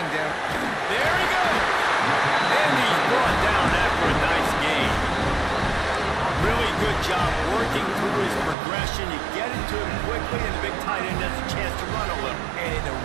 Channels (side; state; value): left; drops out; at 8.6 s